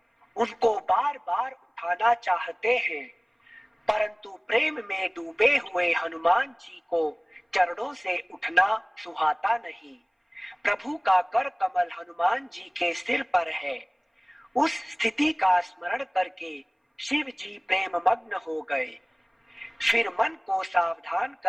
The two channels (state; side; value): identical; both; correlation 1.00